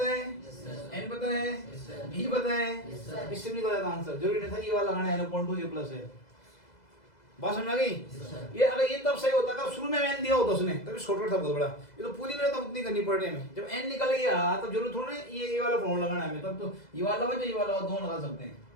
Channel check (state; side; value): late; right; 2.0 ms